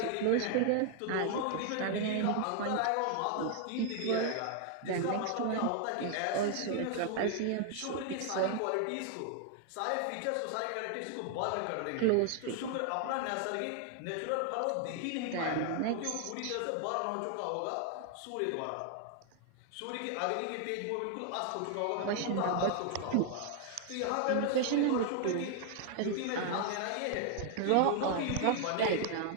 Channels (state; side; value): different; both; correlation 0.00